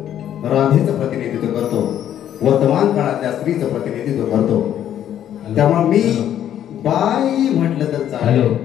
राधेचं प्रतिनिधित्व करतो, वर्तमान काळातल्या स्त्रीचं प्रतिनिधित्व करतो. त्यामुळे मी बाई म्हटलं तर चालेल,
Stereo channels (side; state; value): right; quieter; 10.6 dB